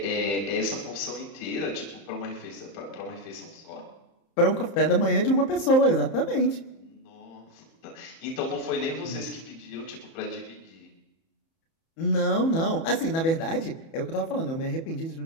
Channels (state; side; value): late; right; 30 ms